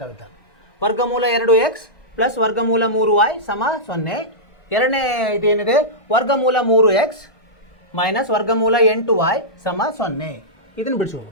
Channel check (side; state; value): right; late; 1.3 ms